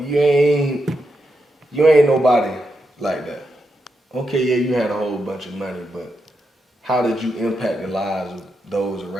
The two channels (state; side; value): normal; both; correlation 0.85